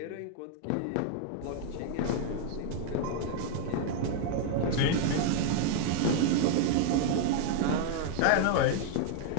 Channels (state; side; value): different; both; correlation 0.00